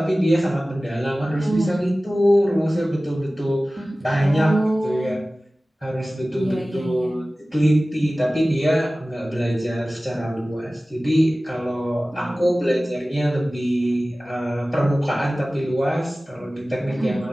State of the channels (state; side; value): normal; both; correlation 0.97